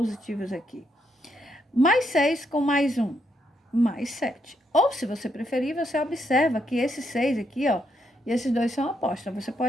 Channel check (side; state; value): both; normal; correlation 0.77